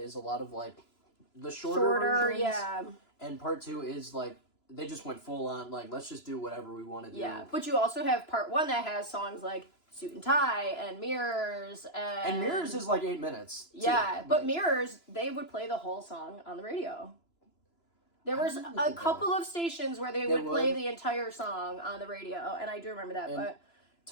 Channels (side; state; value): right; late; 3.0 ms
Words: a lot of like the shorter versions, yeah, and part 2 is like they just went full on like let's just do whatever we want to do. Yeah, but you also have part 1 that has songs like Suit and Tie and Mirrors, and Mirrors is like 8 minutes. Yeah, but Mirrors, they would play the whole song on the radio. There was a couple of stations where they would play the entire song on the radio, and I do remember that. But